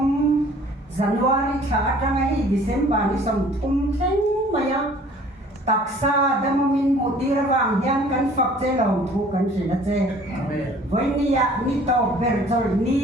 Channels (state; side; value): normal; both; correlation 0.52